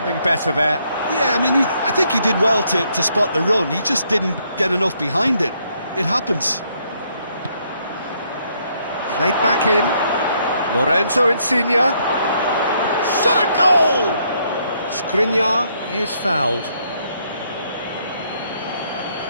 better there. Yeah, I mean, I think he did well to spot the run. He just didn't get enough behind it. It happens. Played back in. Lorenzo Insigne. Shot a goal! Skriniar is fouled.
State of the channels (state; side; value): inverted; both; correlation -0.71